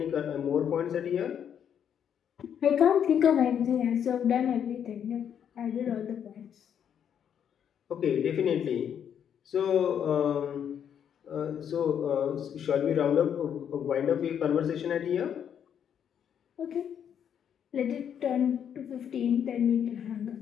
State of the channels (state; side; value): quieter; right; 8.6 dB